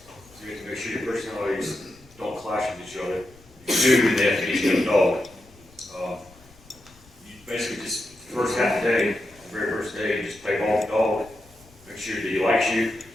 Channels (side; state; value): left; noise; rumble, 26 dB below the sound